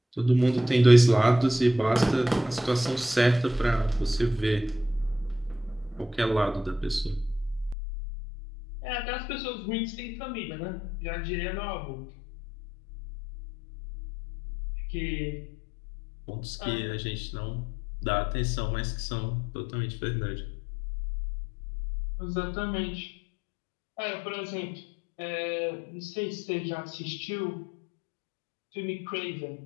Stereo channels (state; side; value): drops out; right; at 7.8 s